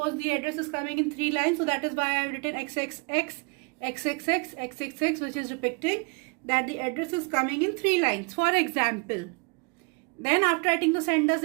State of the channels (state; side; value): quieter; left; 31.4 dB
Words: the address is coming in 3 lines. So that is why I have written XXX, XXX, XXX, which is depicting that the address is coming in 3 lines. For example, then after writing the sender's